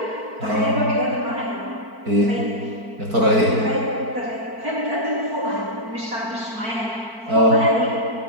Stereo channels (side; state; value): left; late; 4.5 ms